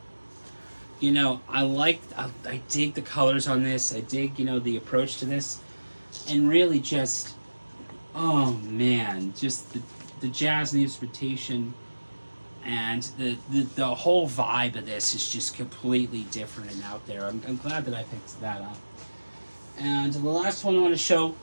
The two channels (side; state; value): both; inverted; correlation -1.00